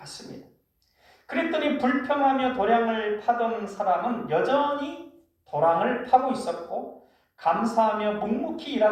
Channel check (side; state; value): both; identical; correlation 1.00